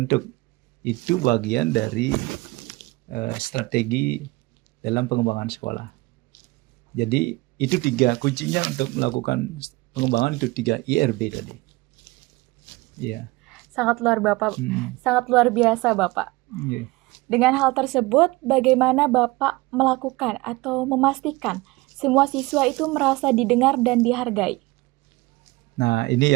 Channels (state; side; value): quieter; left; 22.0 dB